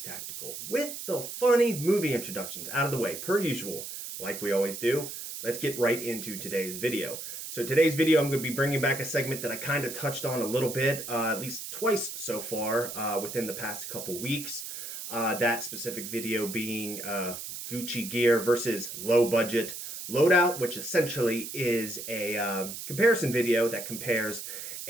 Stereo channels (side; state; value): right; noise; hiss, 8 dB below the sound